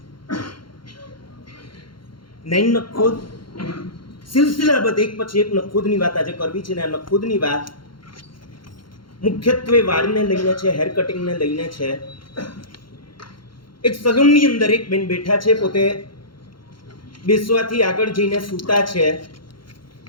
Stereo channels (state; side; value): late; right; 0.73 ms